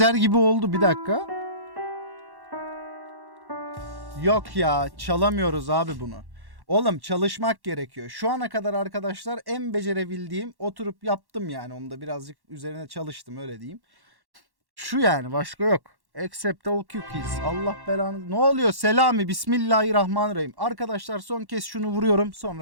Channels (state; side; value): late; left; 1.1 ms